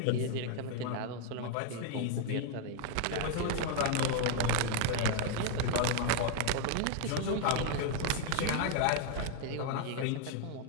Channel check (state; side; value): different; both; correlation 0.00